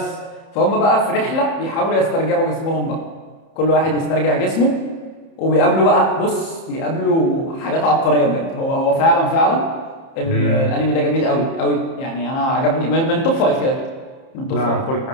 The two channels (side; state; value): right; late; 30 ms